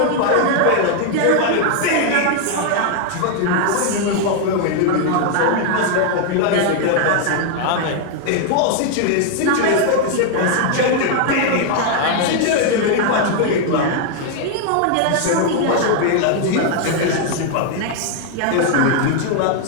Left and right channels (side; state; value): both; different; correlation 0.00